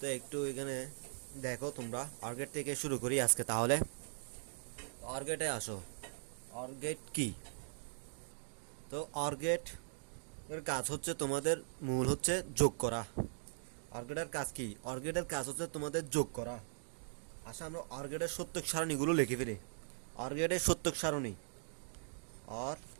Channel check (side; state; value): left; silent; digital silence